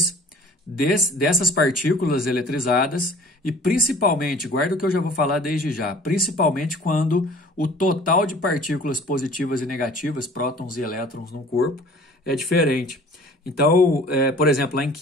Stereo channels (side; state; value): both; normal; correlation 0.49